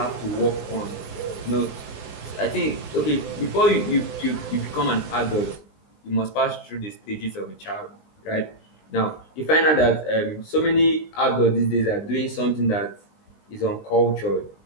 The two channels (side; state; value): right; late; 20 ms